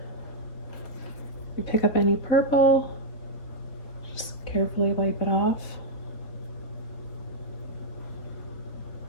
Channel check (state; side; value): late; right; 4.2 ms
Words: You pick up any purple, just carefully wipe it off.